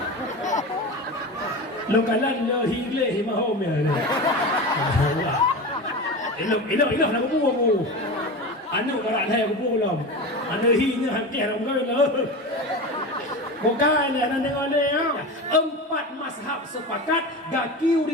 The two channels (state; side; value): normal; both; correlation 0.26